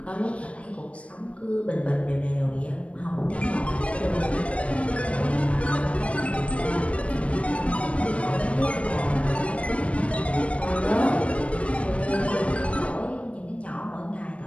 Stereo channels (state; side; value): late; right; 0.063 ms